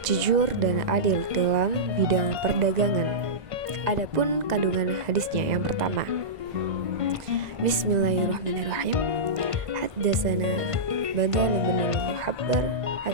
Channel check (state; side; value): late; left; 1.9 ms